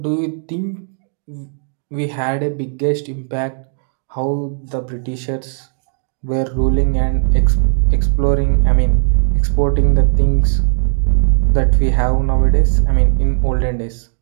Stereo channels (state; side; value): silent; left; 63 dB below the other